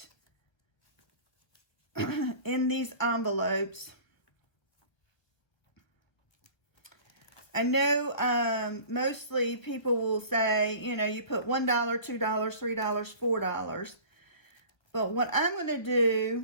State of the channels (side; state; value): right; late; 1.3 ms